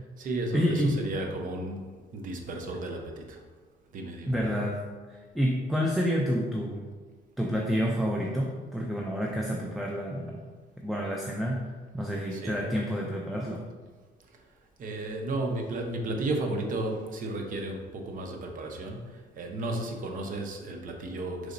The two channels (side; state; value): both; normal; correlation 0.71